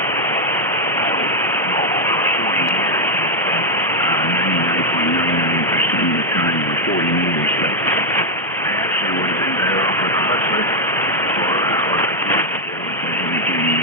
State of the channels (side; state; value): both; normal; correlation 0.00